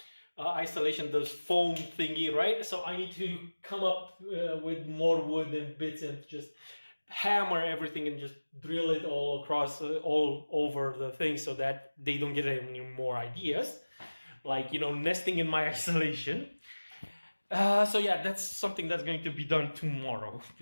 isolation, the foam thingy, right? So I need to come up with more wood and bits and just hammer everything and just drill it all across, all over the thing, so that they don't get any more ideas, like, you know, nesting in my isolation. So yeah, that's something that's going to be done tomorrow,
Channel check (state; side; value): inverted; both; correlation -1.00